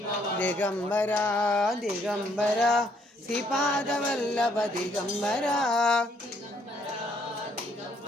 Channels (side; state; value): both; normal; correlation 0.68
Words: దిగంబర దిగంబర శ్రీపాద వల్లభ దిగంబర